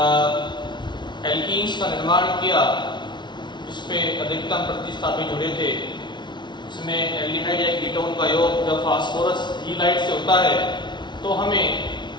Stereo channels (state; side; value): late; right; 0.22 ms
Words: एल्कीन्स का निर्माण किया जिसपे अधिकतम प्रतिस्थापी जुड़े थे। इसमें एल्डिहाइड या कीटोन का योग जब फास्फोरस हीलाइड से होता है तो हमें